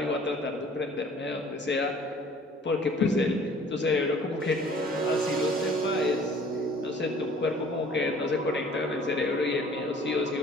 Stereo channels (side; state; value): both; normal; correlation 0.52